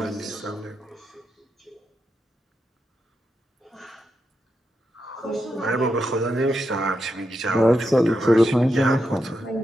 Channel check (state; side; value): normal; both; correlation 0.85